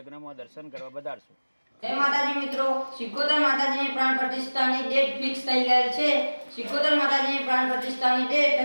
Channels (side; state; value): both; inverted; correlation -1.00